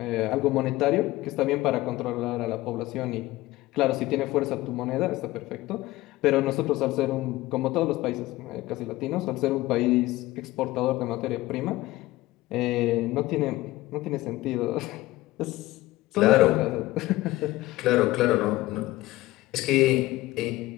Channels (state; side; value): quieter; right; 18.0 dB